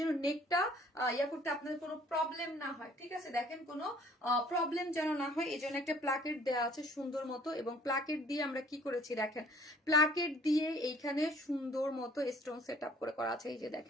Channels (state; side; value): normal; both; correlation 0.56